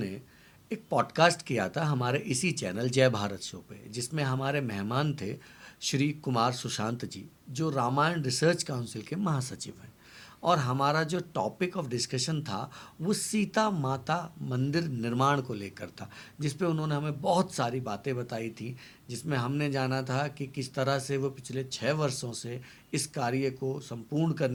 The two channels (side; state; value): both; identical; correlation 1.00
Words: एक पॉडकास्ट किया था हमारे इसी चैनल जय भारत शो पे, जिसमें हमारे मेहमान थे श्री कुमार सुशांत जी, जो रामायण रिसर्च काउंसिल के महासचिव हैं। और हमारा जो टॉपिक ऑफ डिस्कशन था वो सीता माता मंदिर निर्माण को लेकर था, जिस पे उन्होंने हमें बहुत सारी बातें बताई थी, जिसमें हमने जाना था कि किस तरह से वो पिछले 6 वर्षों से इस कार्य को संपूर्ण